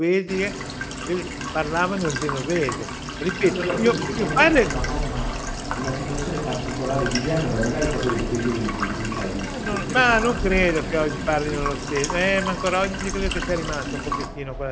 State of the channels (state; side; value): identical; both; correlation 1.00